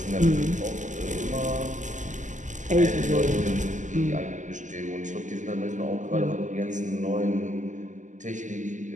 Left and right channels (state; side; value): late; left; 0.36 ms